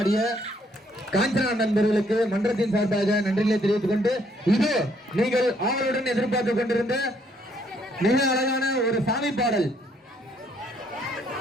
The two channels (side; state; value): both; normal; correlation 0.68